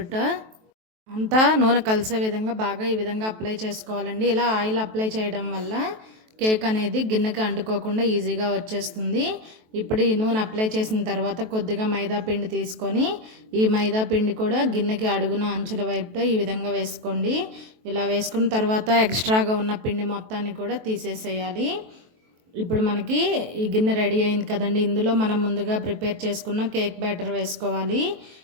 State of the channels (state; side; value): late; left; 23 ms